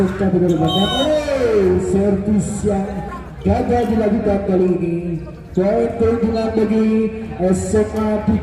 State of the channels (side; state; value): both; identical; correlation 1.00